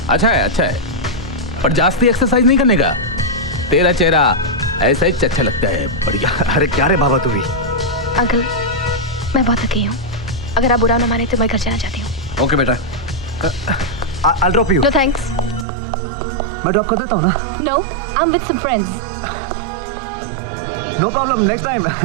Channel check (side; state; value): left; drops out; at 15.7 s